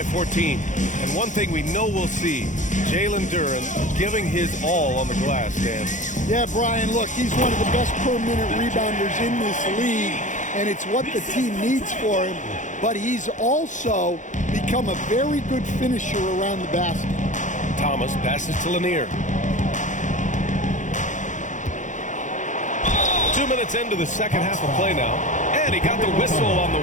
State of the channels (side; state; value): right; late; 0.36 ms